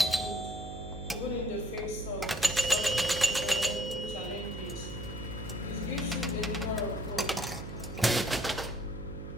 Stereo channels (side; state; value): right; noise; hum, 9 dB below the sound